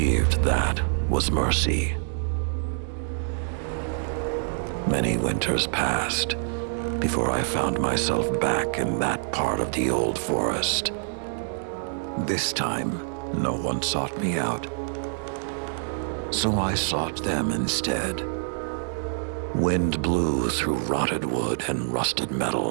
that was mercy. Many winters passed before I found myself back in that part of the old forest. This time, no one sought me out. So I sought them instead. Wind blew through rotted wood and rusted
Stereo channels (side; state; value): left; silent; digital silence